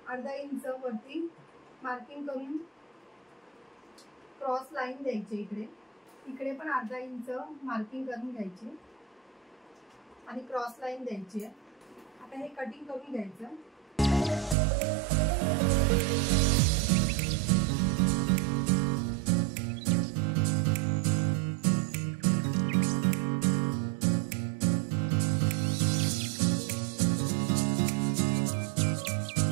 अर्धा इंच वरती मार्किंग करून क्रॉस लाईन द्यायची। इकडे पण अर्धा इंच मार्किंग करून घ्यायची आणि क्रॉस लाईन द्यायची आहे। आता हे कटिंग करून घ्यायचं।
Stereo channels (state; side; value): drops out; left; at 14.6 s